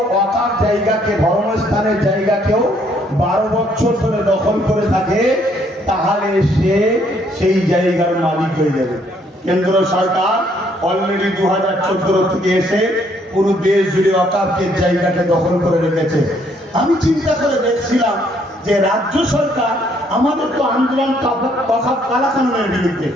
অকার জায়গাকে, ধর্মস্থানের জায়গাকেও 12 বছর ধরে দখল করে থাকে, তাহলে সে সেই জায়গার মালিক হয়ে যাবে। কেন্দ্র সরকার অলরেডি 2014 থেকে এসে পুরো দেশ জুড়ে অকাফের জায়গাকে দখল করে রেখেছে। আমি চিন্তা করে দেখছিলাম যে রাজ্য সরকার আমাদের তো আন্দোলন কালাকানুনের বিরুদ্ধে,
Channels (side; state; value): both; normal; correlation 0.67